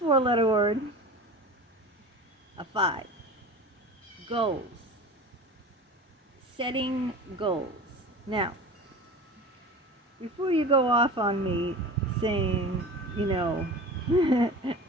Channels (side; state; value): both; normal; correlation 0.35